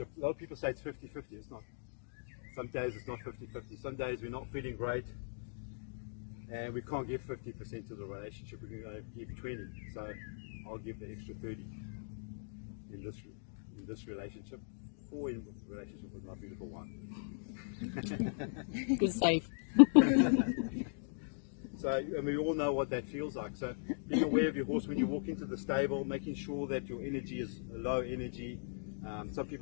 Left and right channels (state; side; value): silent; right; digital silence